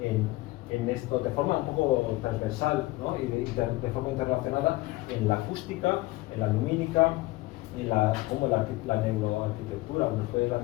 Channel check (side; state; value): right; quieter; 19.9 dB